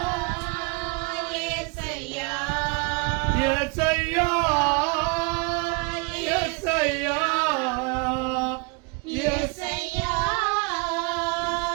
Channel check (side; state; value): left; quieter; 30.1 dB